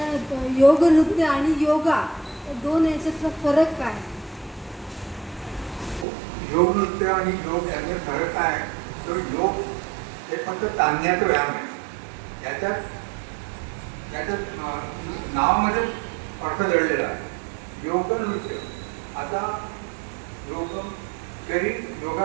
योग नृत्य आणि योगा दोन याच्यातला फरक काय? योग नृत्य आणि योग याचा फरक काय? तर योग हे फक्त ताणण्याचा व्यायाम आहे. याच्यात नावामध्ये अर्थ दडलेला आहे. योग नृत्य आता योग शरीर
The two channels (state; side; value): drops out; left; at 6.1 s